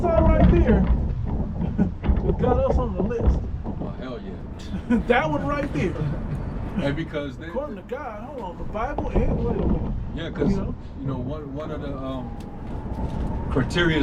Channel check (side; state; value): both; identical; correlation 1.00